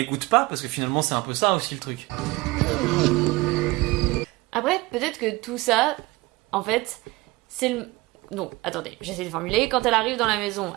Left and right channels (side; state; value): left; quieter; 21.8 dB